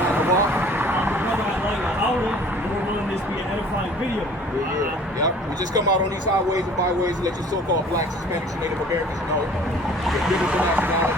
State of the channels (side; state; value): both; normal; correlation 0.50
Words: video. Yep. We just come out on these highways and byways and let your so-called blacks, Hispanics, and Native Americans know the biblical